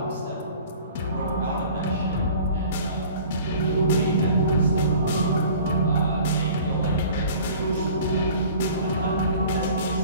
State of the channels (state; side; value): inverted; both; correlation -0.47